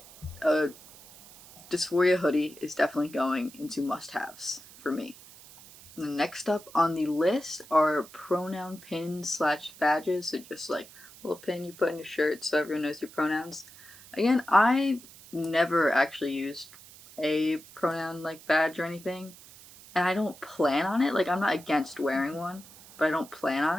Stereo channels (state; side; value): noise; right; hiss, 20 dB below the sound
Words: dysphoria hoodie is definitely going into must-haves for me. The next up on the list are pronoun pins slash badges. So just like a little pin you put in your shirt so everyone knows your pronouns. Again, I never actually used a pronoun like badge or anything, and I don't plan on it. Like I'm not against wearing one, but I don't plan